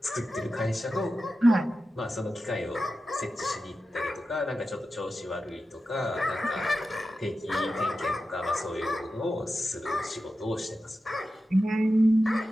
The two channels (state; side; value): normal; both; correlation 0.92